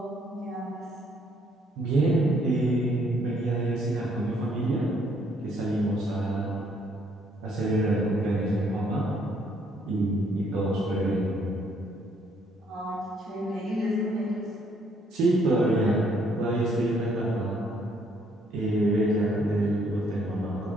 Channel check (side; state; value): both; normal; correlation 0.67